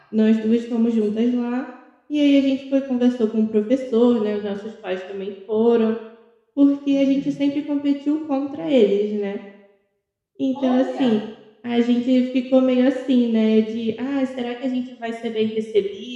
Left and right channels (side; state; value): both; identical; correlation 1.00